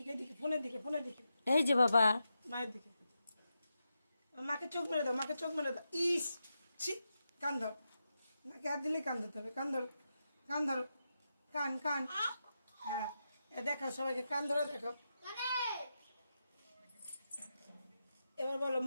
এদিকে, ফোনের দিকে, ফোনের দিকে, এই যে বাবা, মায়ের দিকে। মাকে চোখ মেরে দাও, মাকে চোখ মেরে দাও। ইস, ছি, কান ধর, নাকে হাত দিলে কান ধরতে হবে, কান ধরো, কান ধরো, কান কান। হ্যাঁ, দেখো সবাইকে কান ধরে দেখো। এবার বলো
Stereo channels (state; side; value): inverted; both; correlation -0.88